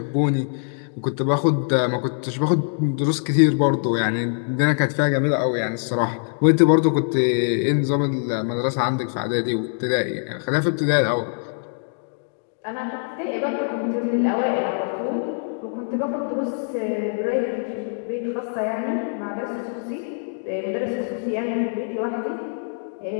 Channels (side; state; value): right; silent; digital silence